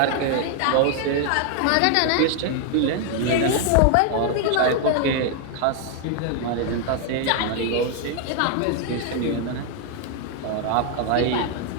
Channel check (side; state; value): both; different; correlation 0.00